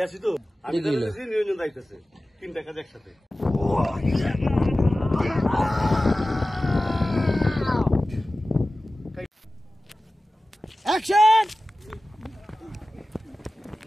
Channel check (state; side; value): normal; both; correlation 0.96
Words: আছি তো আমি নিরঞ্জন যাইতেছে 3টা কাজ একসাথে অ্যাকশন